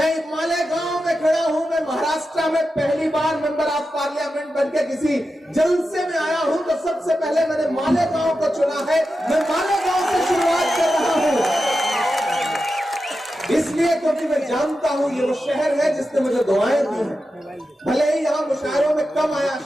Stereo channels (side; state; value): both; normal; correlation 0.90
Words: मालेगांव में खड़ा हूं। मैं महाराष्ट्र में पहली बार मेंबर ऑफ पार्लियामेंट बनकर किसी जलसे में आया हूं तो सबसे पहले मैंने मालेगांव को चुना है। मैं मालेगांव से शुरुआत कर रहा हूं, इसलिए क्योंकि मैं जानता हूं ये वो शहर है जिसने मुझे दुआएं दी हैं। भले ही यहाँ मुशायरों में कम आया,